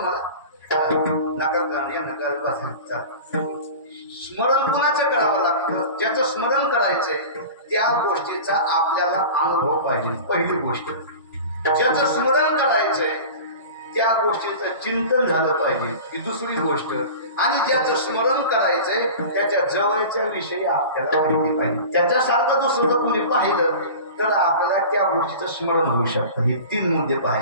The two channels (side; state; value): both; inverted; correlation -0.36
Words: स्मरण कुणाचं करावं लागतं? ज्याचं स्मरण करायचंय त्या गोष्टीचा आपल्याला अनुभव पाहिजे. पहिली गोष्ट. ज्याचं स्मरण करायचंय त्या गोष्टीचं चिंतन झालं पाहिजे. ही दुसरी गोष्ट. आणि ज्याचं स्मरण करायचंय त्याच्या जवळच्या विषयी आपल्याला माहिती पाहिजे. त्याच्यासारखं दुसरं कोणी पाहिलं तर आपल्याला त्या गोष्टीचं स्मरण होऊ शकतं. हे 3 मुद्दे